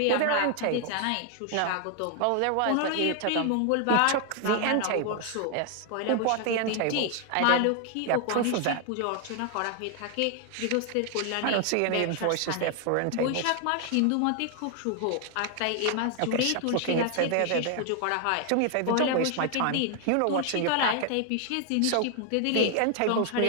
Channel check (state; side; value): different; both; correlation 0.00